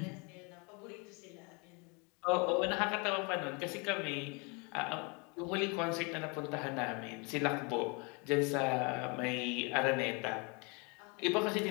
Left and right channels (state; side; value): quieter; right; 31.4 dB